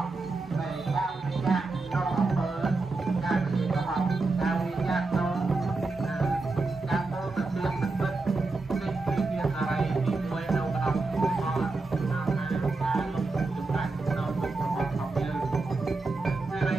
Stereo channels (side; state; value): left; quieter; 3.6 dB